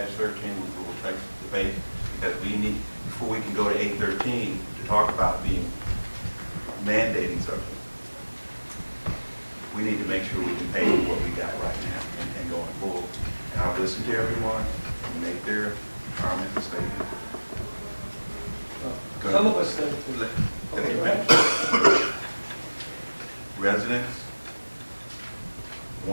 will take the debate, because we need, before we can go to 8-13, to talk about being mandating something, we need to make sure we can pay what we got right now and going forward. And I've listened to everyone, and make their comments and statements. Good. Some of us think. Let me finish. Residents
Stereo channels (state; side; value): inverted; both; correlation -1.00